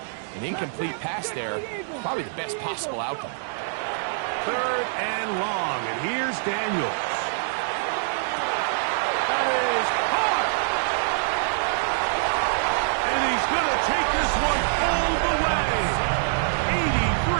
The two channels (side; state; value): left; silent; digital silence